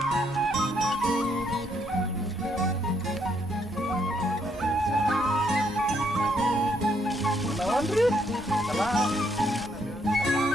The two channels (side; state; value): both; normal; correlation 0.72